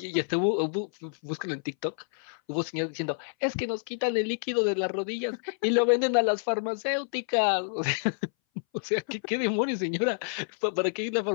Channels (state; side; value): silent; right; 59 dB below the other